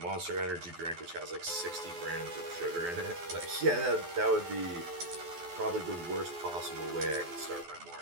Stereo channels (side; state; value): left; late; 12 ms